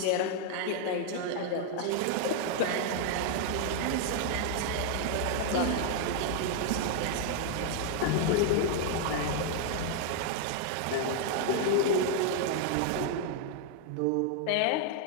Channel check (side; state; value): both; different; correlation 0.00